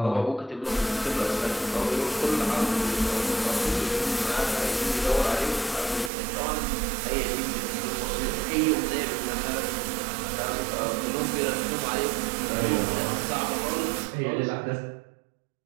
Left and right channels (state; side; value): drops out; left; at 6.1 s